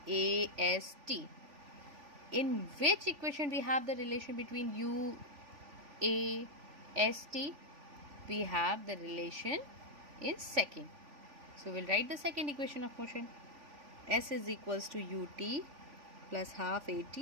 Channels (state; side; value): late; left; 3.4 ms